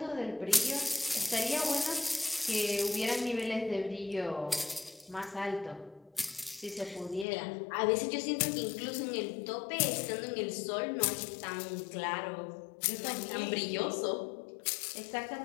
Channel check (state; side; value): drops out; right; at 7.2 s